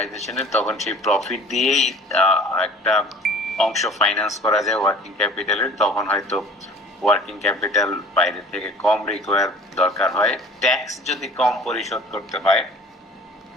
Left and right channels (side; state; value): both; normal; correlation 0.45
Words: তখন সেই প্রফিট দিয়েই একটা অংশ ফাইন্যান্স করা যায় ওয়ার্কিং ক্যাপিটালের, তখন হয়তো ওয়ার্কিং ক্যাপিটাল বাইরে থেকে কম রিকোয়ার দরকার হয়। ট্যাক্স যদি কম পরিশোধ করতে হয়,